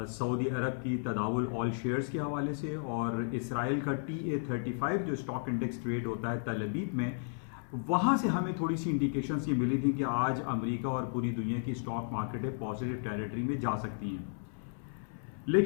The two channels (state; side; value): silent; right; 55 dB below the other